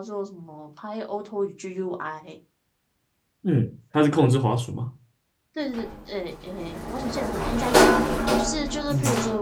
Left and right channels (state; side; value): identical; both; correlation 1.00